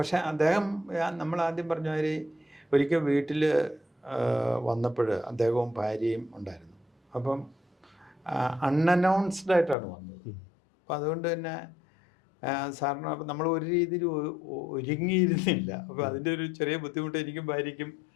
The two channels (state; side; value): drops out; right; at 9.8 s